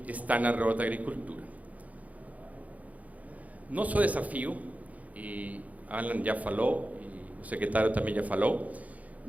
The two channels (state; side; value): late; left; 0.072 ms